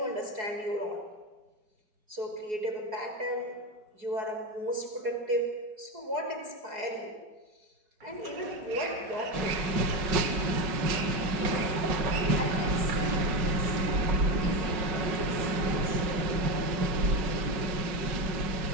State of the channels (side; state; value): left; late; 5.4 ms